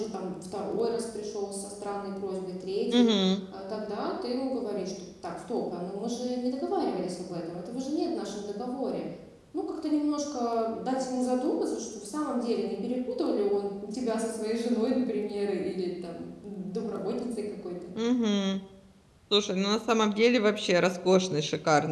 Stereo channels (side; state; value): both; identical; correlation 1.00